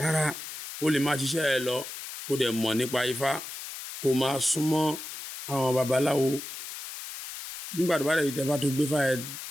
ó lè máa ṣiṣẹ́ ẹ lọ kó dẹ̀ mọ̀ nípa Ifá kó máa súnmọ́ àwọn babaláwo nígbà tó bá dẹ̀ tẹ́fá tó gbé fá ẹ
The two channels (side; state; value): left; noise; hiss, 10 dB below the sound